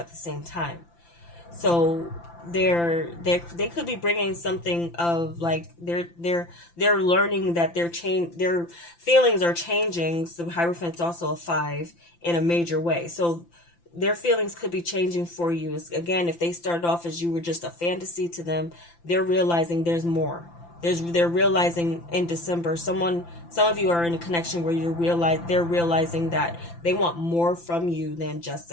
the same time. So they could be bringing something of like they're learning that their feelings are changing. So Hierophant's also a 5 in a major way. So their feelings could be changing for you. Again, if they started off as you were just a fantasy to them, they're realizing there's more. They're realizing in December, some of you are in a connection where they're realizing that they want more from you than just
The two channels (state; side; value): late; right; 5.9 ms